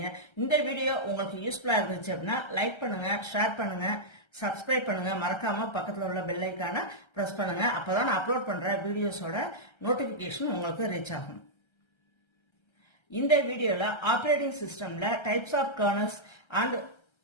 இந்த வீடியோ உங்களுக்கு யூஸ்ஃபுல்லா இருந்துச்சு அப்படின்னா லைக் பண்ணுங்க, ஷேர் பண்ணுங்க, சப்ஸ்கிரைப் பண்ணுங்க, மறக்காம பக்கத்துல உள்ள பெல் ஐகானை பிரஸ் பண்ணுங்க. அப்பதான் நான் அப்லோட் பண்ற வீடியோஸோட நோட்டிபிகேஷன் உங்களுக்கு ரீச் ஆகும். இந்த வீடியோல ஆப்பரேட்டிங் சிஸ்டம்ல types of kernels and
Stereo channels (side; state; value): right; late; 1.3 ms